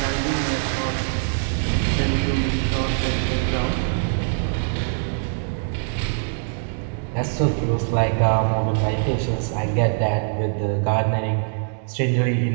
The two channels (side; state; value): left; silent; digital silence